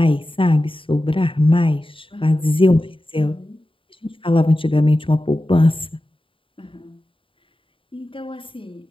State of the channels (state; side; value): late; right; 0.25 ms